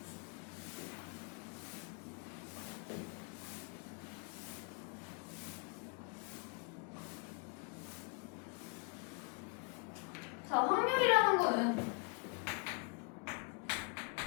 자, 확률이라는 거는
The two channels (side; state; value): right; quieter; 36.3 dB